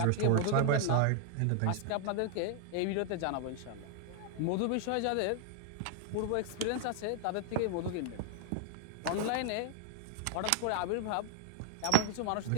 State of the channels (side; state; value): both; different; correlation 0.00